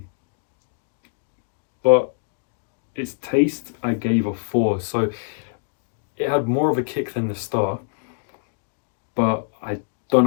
but its taste I gave a 4. So it had more of a kick than the Star, but I don't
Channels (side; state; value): right; silent; digital silence